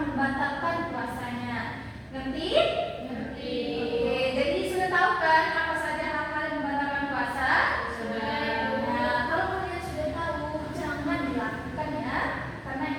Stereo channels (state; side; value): identical; both; correlation 1.00